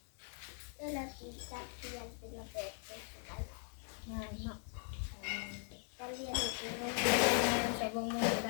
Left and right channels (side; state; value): right; silent; 51 dB below the other